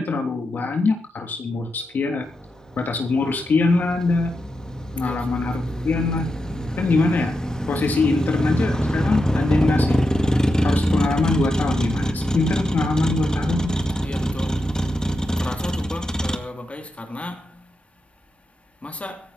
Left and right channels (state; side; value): normal; both; correlation 0.87